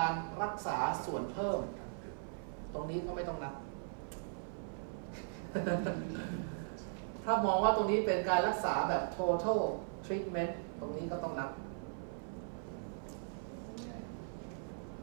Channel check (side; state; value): left; silent; 52 dB below the other